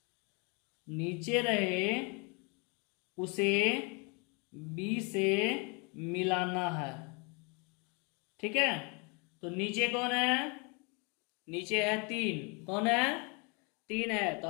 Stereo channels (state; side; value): quieter; right; 32.1 dB